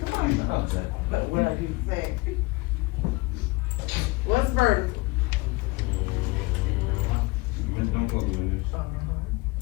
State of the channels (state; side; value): quieter; right; 23.2 dB